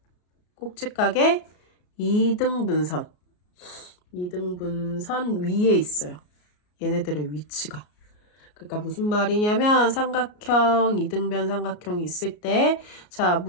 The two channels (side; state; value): right; late; 33 ms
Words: 이등분선 위에 있어요. 얘네들의 위치가. 그러니까 무슨 말이냐면 삼각형, 이등변 삼각형이 있을 때, 자,